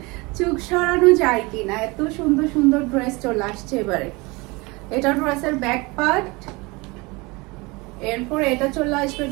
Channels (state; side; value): quieter; left; 25.3 dB